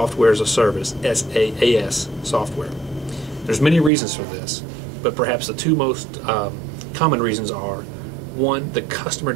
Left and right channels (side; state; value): left; drops out; at 3.9 s